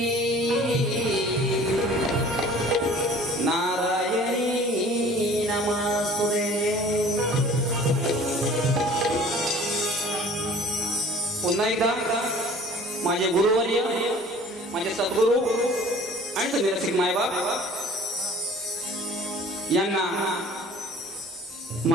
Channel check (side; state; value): both; normal; correlation 0.49